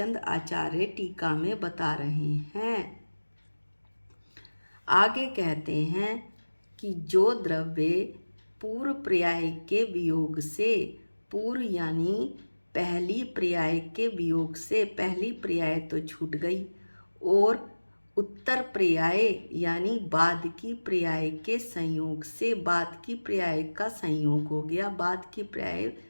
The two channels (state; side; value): inverted; both; correlation -1.00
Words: आचार्य टीका में बता रहे हैं। आगे कहते हैं कि जो द्रव्य पूर्व पर्याय के वियोग से, पूर्व यानी पहली पर्याय के वियोग से, पहली पर्याय तो छूट गई और उत्तर पर्याय यानी बाद की पर्याय के संयोग से, बाद की पर्याय का संयोग हो गया, बाद की पर्याय